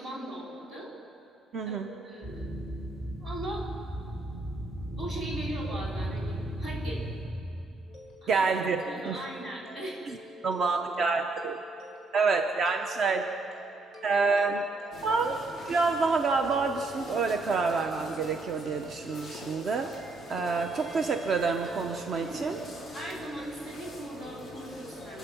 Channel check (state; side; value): quieter; left; 3.4 dB